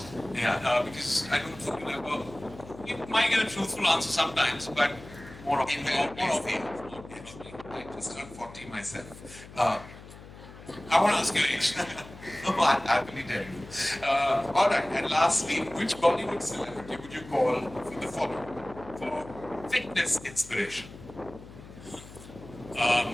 Yeah. Because I don't think you'll ever. You might get a truthful answer sometimes, but more often, Invariably more often. same. I just turned 40 myself. I want to ask your age. No, I'll happily tell you. All right, and lastly, which Bollywood celebrity would you call for the following? For fitness inspiration,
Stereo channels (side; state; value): left; noise; hum, 17 dB below the sound